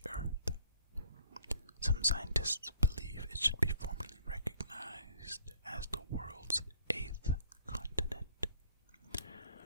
Earth. Some scientists believe it should be formally recognized as the world's 8th continent.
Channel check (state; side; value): inverted; both; correlation -0.59